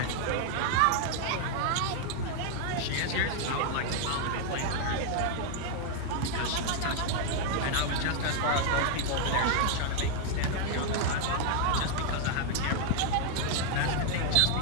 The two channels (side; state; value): both; different; correlation 0.00